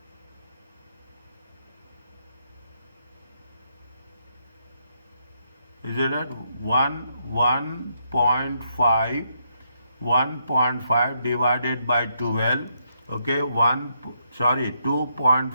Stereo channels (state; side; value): inverted; both; correlation -0.77